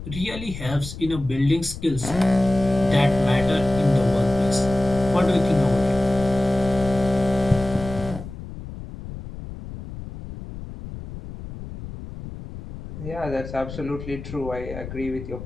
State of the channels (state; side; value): noise; left; rumble, 11 dB below the sound